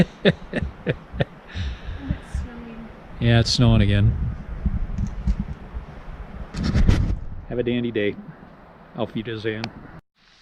it's snowing. Yeah, it's snowing again. Have a dandy day. Auf Wiedersehen.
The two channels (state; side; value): identical; both; correlation 1.00